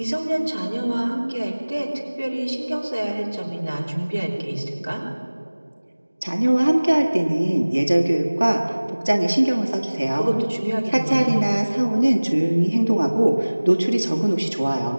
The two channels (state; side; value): inverted; both; correlation -1.00